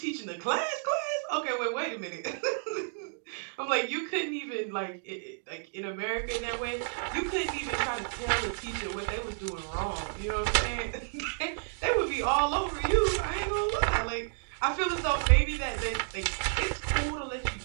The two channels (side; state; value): left; silent; 57 dB below the other